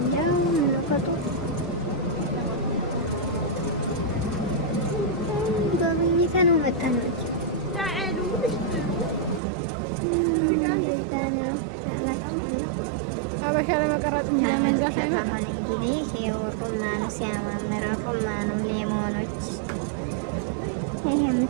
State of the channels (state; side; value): drops out; left; at 9.4 s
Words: ምንቆጡ ጎብኝተን መጣን ነው። አበሻ ለመቀረጽ እንጂ ለመግዛት አይመጣም። አሁን እንግዲህ ይሄው ሩማኑ ሲያማምር ሩማኑ ሌሞኖች ይሄ